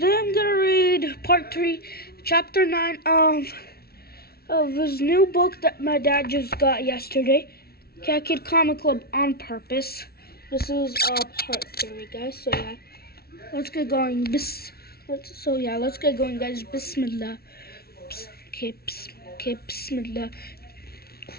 gonna read part 3, chapter 9 of his new book that my dad just got yesterday, Cat Kid Comic Club on Purpose. This is part 3, guys. So yeah, let's get going. Let's get going, guys. Bismillah. Okay, bismillah.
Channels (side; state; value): right; late; 0.45 ms